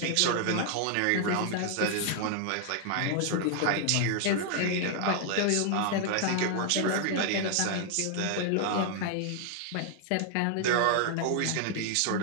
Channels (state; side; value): different; both; correlation 0.00